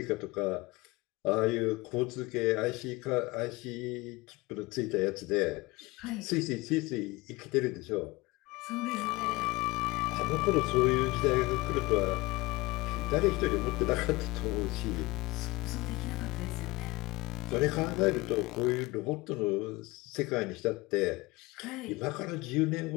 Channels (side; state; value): right; quieter; 21.8 dB